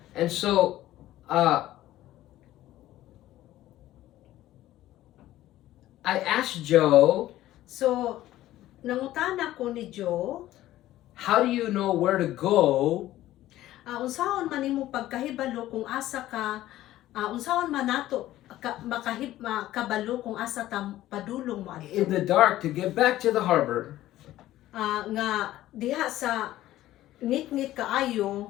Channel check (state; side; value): quieter; right; 14.6 dB